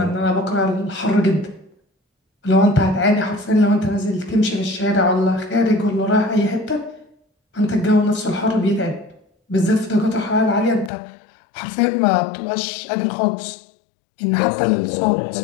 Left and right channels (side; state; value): right; drops out; at 10.9 s